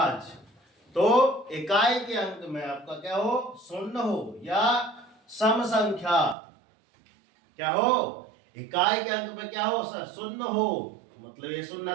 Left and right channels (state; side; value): drops out; left; at 6.4 s